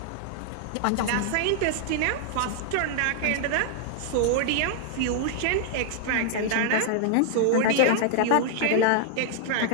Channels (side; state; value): both; different; correlation -0.01